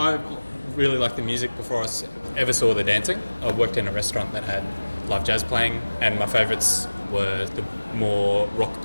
really liked the music before I ever saw the dancing. I worked in a restaurant that had live jazz playing, and my favourites were the more rock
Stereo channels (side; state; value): both; inverted; correlation -1.00